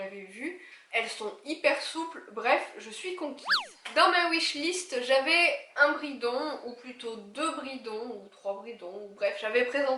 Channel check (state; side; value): identical; both; correlation 1.00